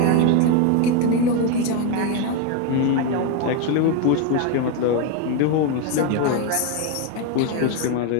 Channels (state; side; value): different; both; correlation 0.02